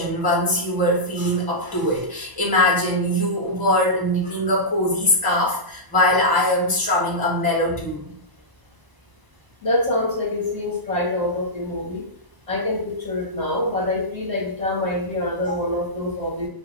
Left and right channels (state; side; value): late; left; 1.0 ms